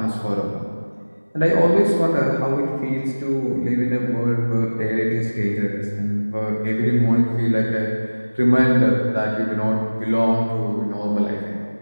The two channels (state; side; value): inverted; both; correlation -1.00